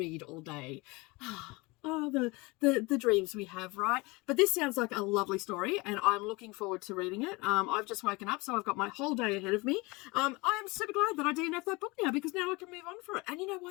all day. Oh, the dreams we have, right? But this sounds like a lovely story, and I'm looking forward to reading it. I've just woken up, so I've got my whole day ahead of me. I am super glad that I DNF'd that book now, because now I can move on for it. And you know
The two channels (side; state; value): right; quieter; 24.8 dB